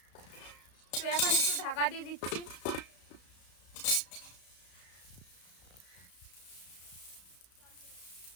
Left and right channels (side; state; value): right; late; 33 ms